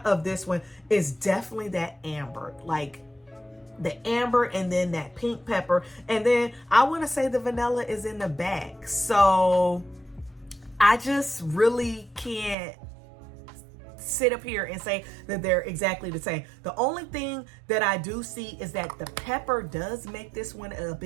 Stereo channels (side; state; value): left; drops out; at 12.6 s